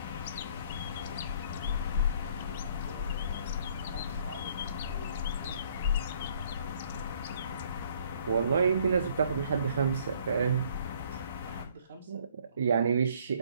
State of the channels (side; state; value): both; inverted; correlation -0.61